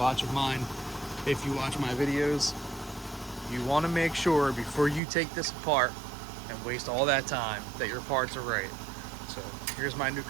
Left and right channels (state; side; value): drops out; left; at 5.0 s